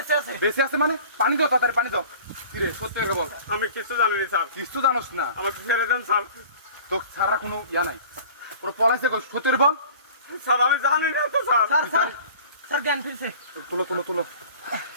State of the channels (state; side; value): inverted; both; correlation -0.45